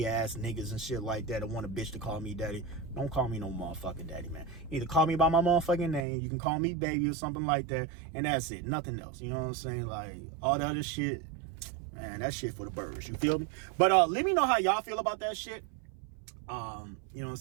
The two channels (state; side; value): drops out; left; at 6.0 s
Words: ass niggas and shit like that want a bitch to call me daddy. Don't call me no motherfucking daddy, man. Either call me by my motherfucking name, you can call me baby or something like that, and that's it. Nothing else. You know what I'm saying? Like, all the other shit, man, that shit for the birds. You feel me? But let me know how y'all feel about that shit. You know what I'm